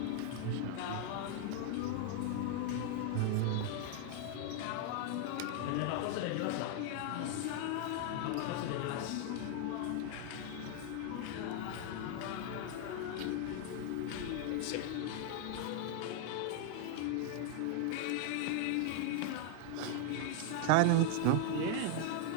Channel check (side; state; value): both; different; correlation 0.00